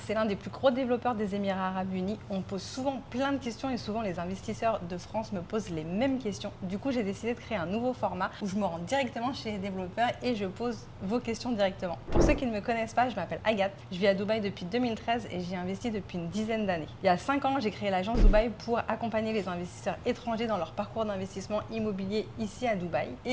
l'un des plus gros développeurs des Émirats Arabes Unis. On me pose souvent plein de questions et souvent les investisseurs de France me posent les mêmes questions. Du coup, j'ai décidé de créer un nouveau format où je me rends directement chez les développeurs et je pose vos questions directement. Pour ceux qui ne me connaissent pas, je m'appelle Agathe. Je vis à Dubaï depuis 2013 et j'y investi depuis une dizaine d'années. Il y a 5 ans, j'ai créé l'agence Dubaï pour accompagner les investisseurs étrangers dans leur parcours d'investissement immobilier ici à Dubaï.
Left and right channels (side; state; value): both; identical; correlation 1.00